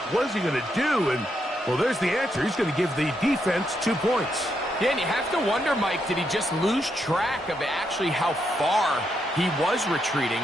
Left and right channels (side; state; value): both; normal; correlation 0.80